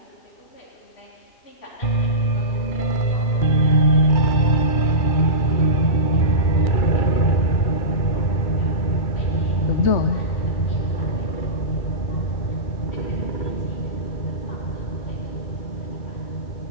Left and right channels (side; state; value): right; late; 2.3 ms